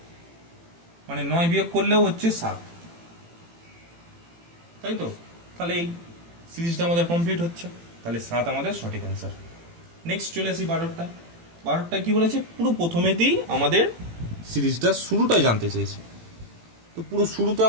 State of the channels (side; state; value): left; late; 18 ms